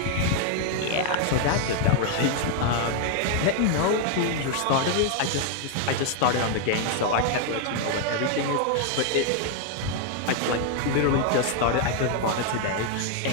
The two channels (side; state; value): both; different; correlation 0.00